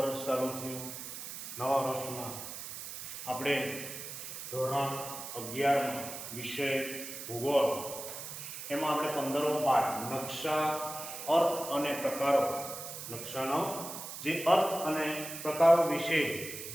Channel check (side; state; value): right; noise; hiss, 9 dB below the sound